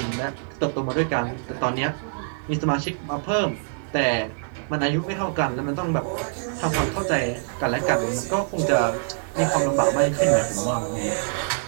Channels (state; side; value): silent; left; 62 dB below the other